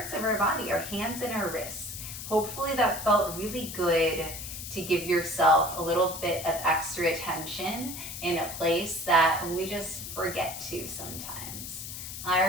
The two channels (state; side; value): noise; left; hiss, 8 dB below the sound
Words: of our body, our hands and our wrists. Hopefully that felt really good to give yourself a little bit of extra attention in a place that we just forget to sometimes.